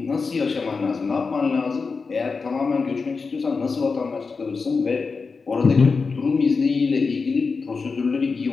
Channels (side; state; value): right; quieter; 4.7 dB